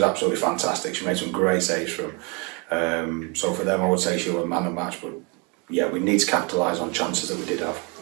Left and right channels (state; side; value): quieter; left; 31.7 dB